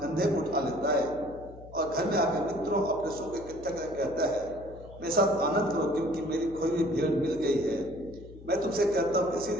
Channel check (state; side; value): noise; left; hum, 18 dB below the sound